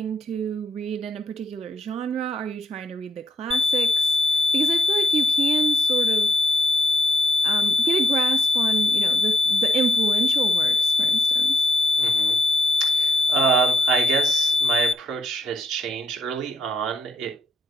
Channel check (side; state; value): both; normal; correlation 0.72